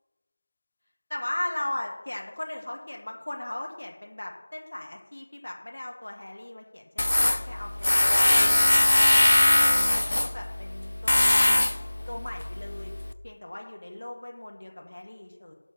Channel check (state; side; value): inverted; both; correlation -1.00